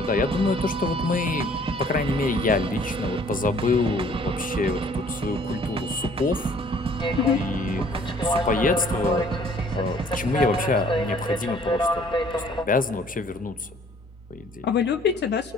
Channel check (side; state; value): both; normal; correlation 0.57